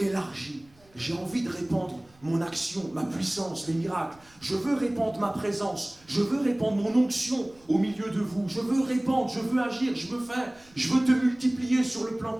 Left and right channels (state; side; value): noise; right; rumble, 29 dB below the sound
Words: J'ai envie de répandre mon action, ma puissance, les miracles. Je veux répandre ma présence. Je veux répandre mon onction au milieu de vous. Je veux répandre, je veux agir, je veux faire. Je veux te multiplier sur le plan